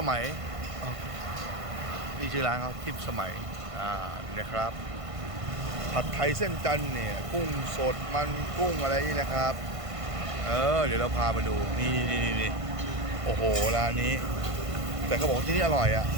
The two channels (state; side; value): late; left; 1.5 ms